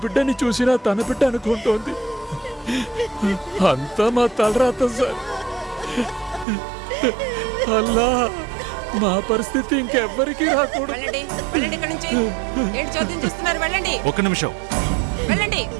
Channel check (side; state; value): left; drops out; at 6.5 s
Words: బిడ్డని చూసినా తన బిడ్డ అనుకుంటోంది. అంతా మా తలరాత సార్. అల్లా మా పరిస్థితి ఇంకెవ్వరికీ రాకూడదు. వెళ్ళండి వెళ్ళండి ఇక్కడి నుంచి. ఏంటి చోద్యం చూస్తున్నారు? వెళ్ళండి ఒక్క నిమిషం. వెళ్ళండి.